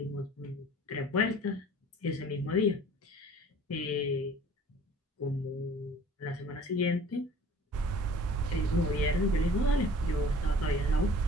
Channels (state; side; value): normal; both; correlation 0.49